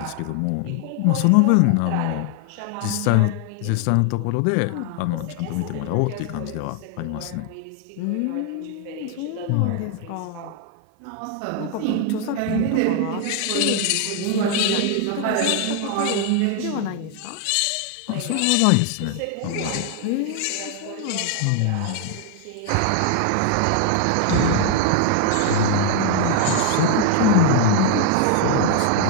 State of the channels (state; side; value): different; both; correlation 0.00